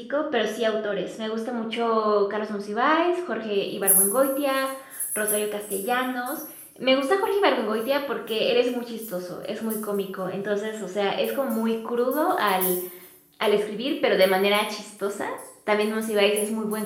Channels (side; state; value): both; identical; correlation 1.00